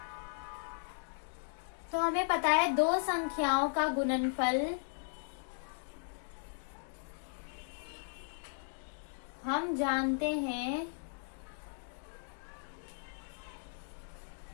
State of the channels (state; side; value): silent; right; digital silence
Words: तो हमें पता है दो संख्याओं का गुणनफल हम जानते हैं